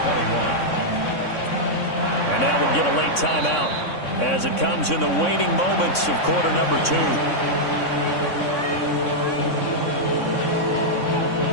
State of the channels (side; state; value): right; late; 3.6 ms